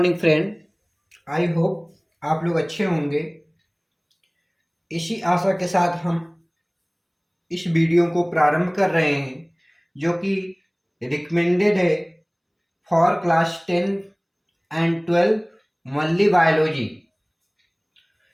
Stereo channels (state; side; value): identical; both; correlation 1.00